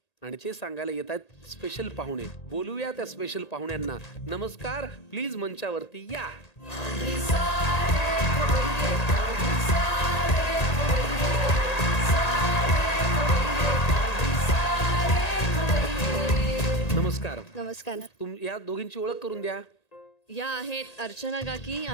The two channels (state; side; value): late; right; 1.8 ms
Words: आणि ते सांगायला येत आहेत स्पेशल पाहुणे. बोलूया त्या स्पेशल पाहुण्यांना. नमस्कार, प्लीज मंचावरती या. नमस्कार. नमस्कार. या दोघींची ओळख करून द्या. या आहेत अर्चना काकी